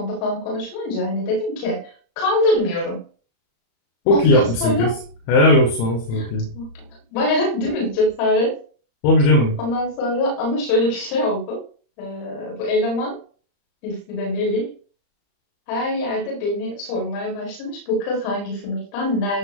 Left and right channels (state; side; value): late; right; 35 ms